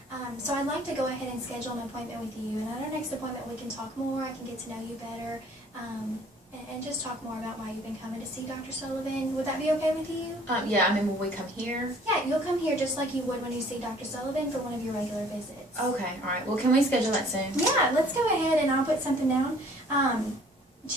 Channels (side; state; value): both; normal; correlation 0.55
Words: So I'd like to go ahead and schedule an appointment with you, and at our next appointment we can talk more, I can get to know you better, and just talk more about why you've been coming to see Dr. Sullivan. Would that be okay with you? Yeah, I mean, will we come here? Yeah, you'll come here just like you would when you see Dr. Sullivan for one of your regular visits. Okay, alright. Well, can we schedule that soon? Yeah, let's go ahead and I'll put something down.